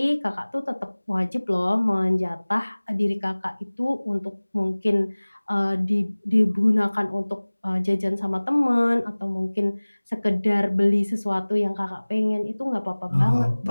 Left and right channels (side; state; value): both; inverted; correlation -1.00